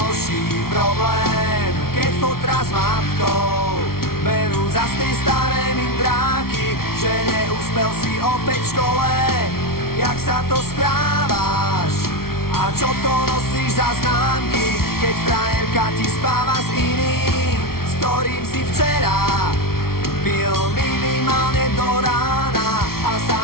problém, keď fotra s matkou berú za tie staré mindráky, že neúspel si opäť v škole. Jak sa to správaš? A čo to nosíš za známky, keď frajerka ti spáva s iným, s ktorým si včera pil minimálne do rána a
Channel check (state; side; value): late; right; 0.94 ms